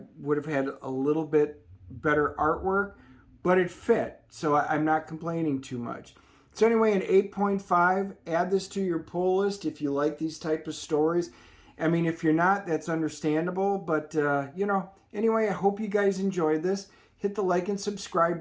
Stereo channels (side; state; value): both; identical; correlation 1.00